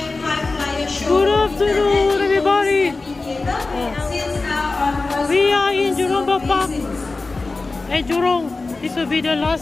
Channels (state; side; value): quieter; right; 3.6 dB